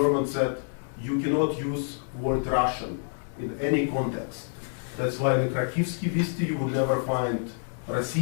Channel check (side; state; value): right; silent; digital silence